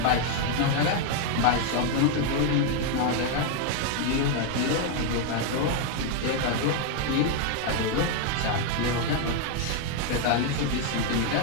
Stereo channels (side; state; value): both; different; correlation 0.01